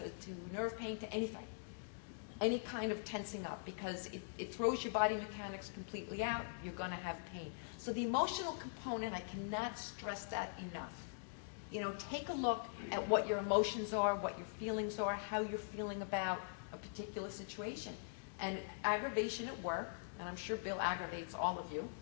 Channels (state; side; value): silent; right; digital silence